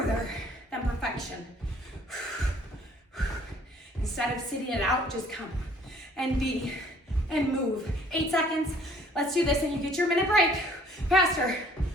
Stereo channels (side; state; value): both; normal; correlation 0.57